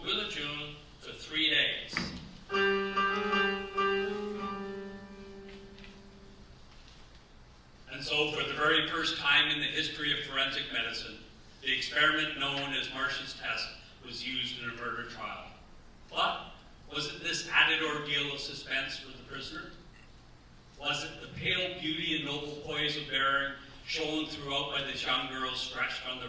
will adjourn for 3 days. And so, for the very first time in the history of forensic medicine, the experiment known as Marsh's test was used in a murder trial. But was it this added ordeal of suspense for the prisoner? Was it the pale beauty and noble poise of bearing shown throughout by this young girl stretched on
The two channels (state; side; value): identical; both; correlation 1.00